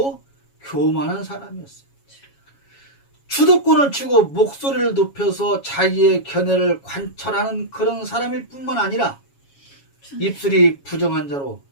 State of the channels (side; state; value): right; late; 7.2 ms